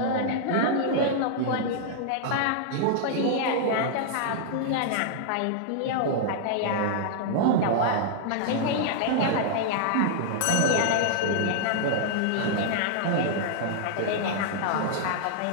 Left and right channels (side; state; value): both; different; correlation -0.01